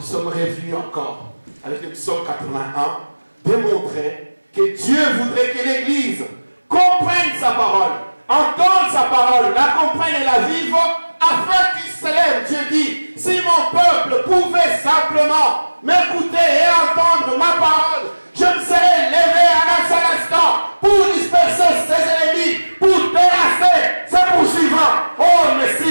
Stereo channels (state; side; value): inverted; both; correlation -1.00